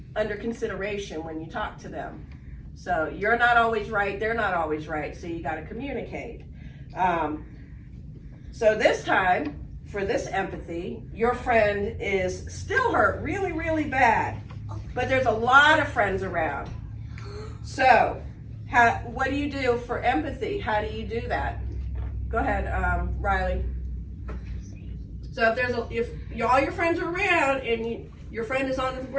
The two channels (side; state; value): both; identical; correlation 1.00